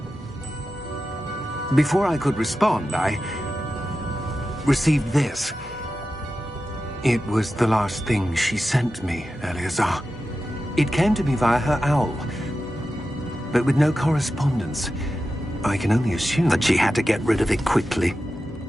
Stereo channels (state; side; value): normal; both; correlation 0.92